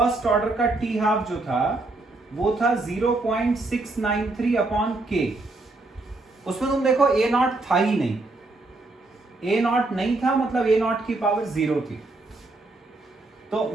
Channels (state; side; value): quieter; left; 3.1 dB